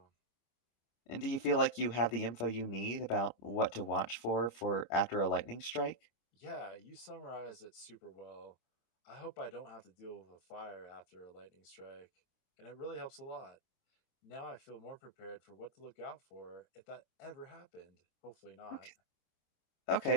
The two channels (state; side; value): late; right; 27 ms